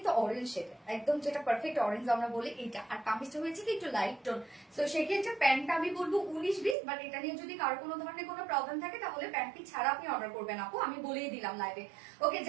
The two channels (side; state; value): left; drops out; at 6.8 s